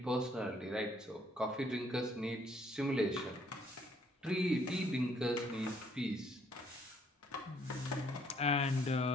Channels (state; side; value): normal; both; correlation 0.66